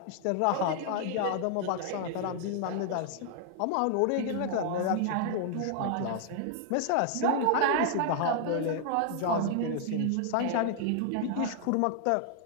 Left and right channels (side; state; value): both; different; correlation 0.00